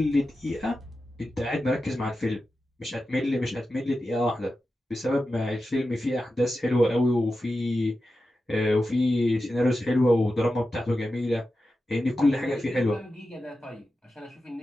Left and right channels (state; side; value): normal; both; correlation 0.92